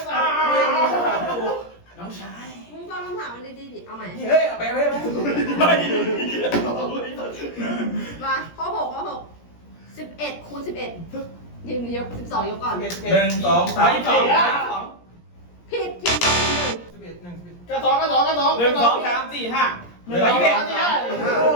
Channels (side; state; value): right; late; 17 ms